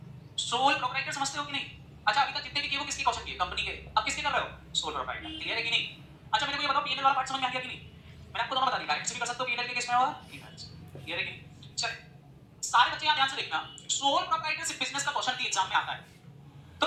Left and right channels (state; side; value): identical; both; correlation 1.00